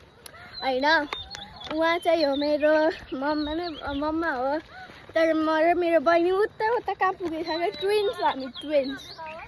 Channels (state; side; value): identical; both; correlation 1.00